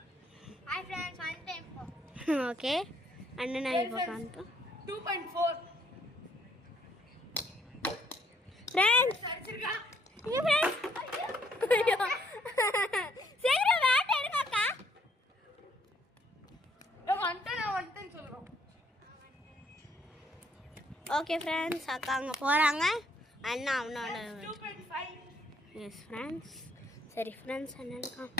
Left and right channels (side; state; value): both; normal; correlation 0.68